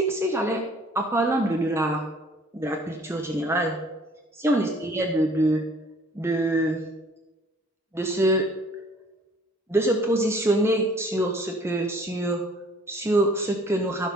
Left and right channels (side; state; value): both; normal; correlation 0.55